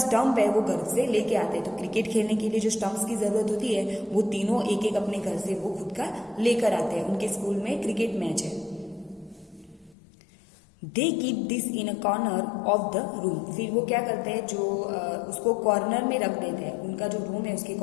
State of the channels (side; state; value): right; drops out; at 10.0 s